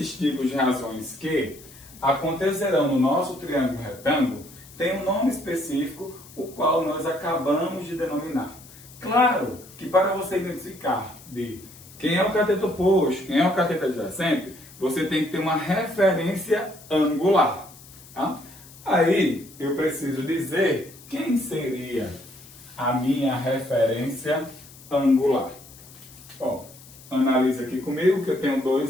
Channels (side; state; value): left; noise; hiss, 21 dB below the sound